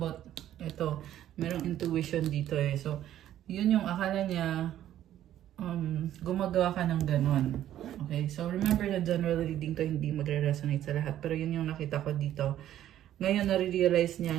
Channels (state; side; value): quieter; left; 12.0 dB